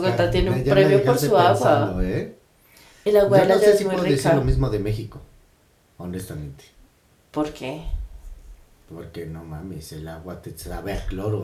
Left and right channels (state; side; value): identical; both; correlation 1.00